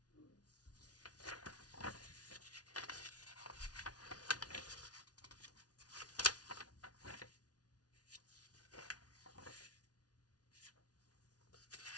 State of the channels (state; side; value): late; right; 0.69 ms